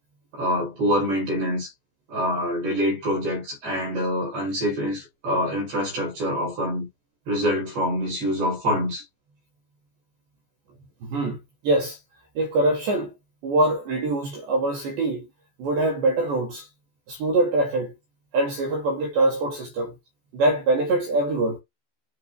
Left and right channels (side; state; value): left; late; 14 ms